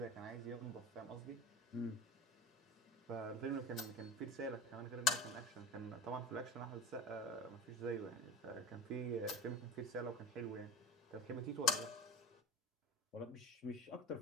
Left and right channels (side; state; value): both; normal; correlation 0.32